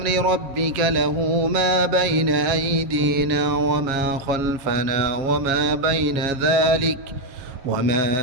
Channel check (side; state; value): left; late; 7.3 ms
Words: ربك له ما بين أيدينا وما خلفنا وما بين ذلك